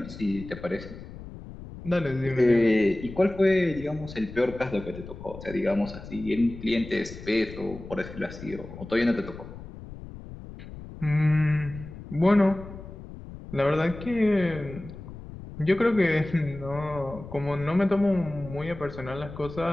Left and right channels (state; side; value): noise; left; rumble, 13 dB below the sound